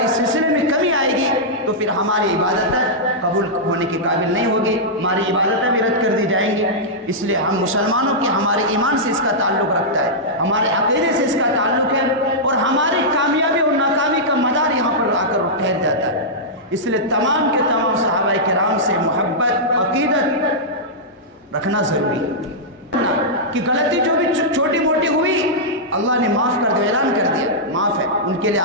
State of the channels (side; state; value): both; normal; correlation -0.10